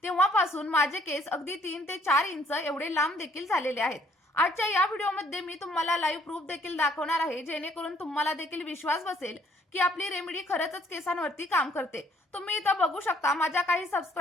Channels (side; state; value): both; normal; correlation 0.63